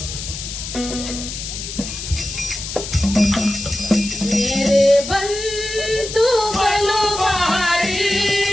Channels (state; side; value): noise; left; hiss, 8 dB below the sound